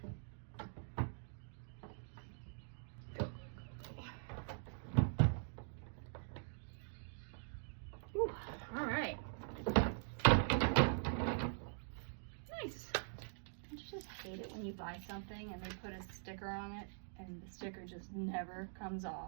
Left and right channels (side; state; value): left; silent; digital silence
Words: Go, go, go, go. Ooh, all right. Nice. Don't you just hate it when you buy something and they put a sticker on it and the sticker just never comes